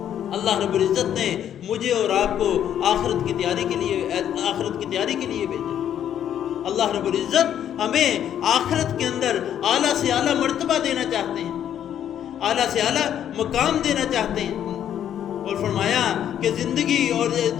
اللہ رب العزت نے مجھے اور آپ کو آخرت کی تیاری کے لیے بھیجا۔ اللہ رب العزت ہمیں آخرت کے اندر اعلیٰ سے اعلیٰ مرتبہ دینا چاہتے ہیں، اعلیٰ سے اعلیٰ مقام دینا چاہتے ہیں، اور فرمایا کہ زندگی اور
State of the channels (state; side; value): quieter; right; 10.0 dB